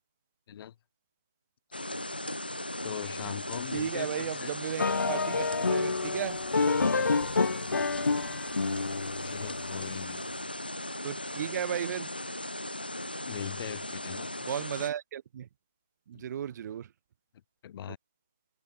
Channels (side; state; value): both; inverted; correlation -0.65